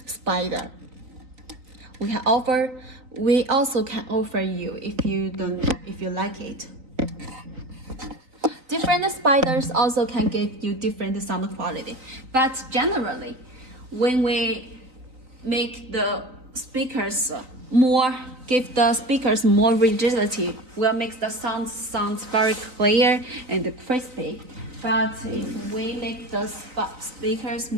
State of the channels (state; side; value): late; left; 3.9 ms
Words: spider. We also can offer you if you like it. Different spiders also can give you different sound quality. But generally, when we make the speakers more, give the speakers more rigidity, will make the sounds very clear and crispy. But if we make the speakers